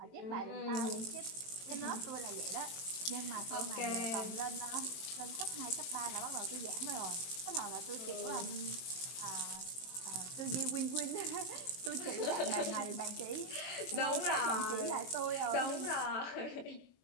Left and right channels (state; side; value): late; right; 22 ms